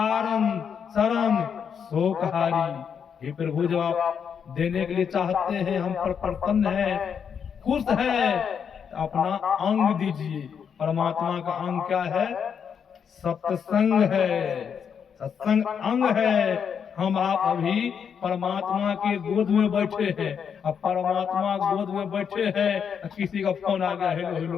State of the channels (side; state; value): right; quieter; 7.3 dB